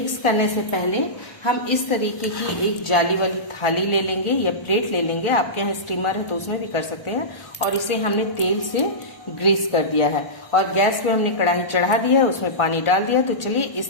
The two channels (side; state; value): right; late; 1.4 ms